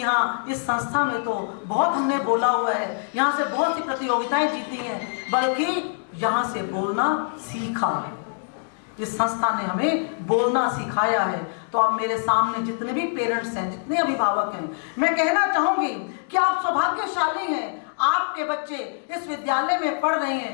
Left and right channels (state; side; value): silent; right; digital silence